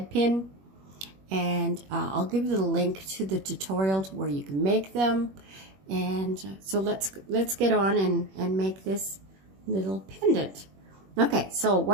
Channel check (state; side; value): late; left; 21 ms